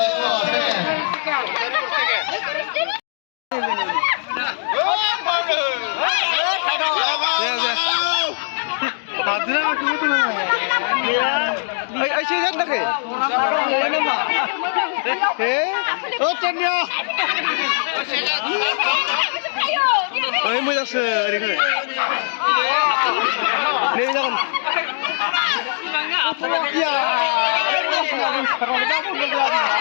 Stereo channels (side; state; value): right; silent; digital silence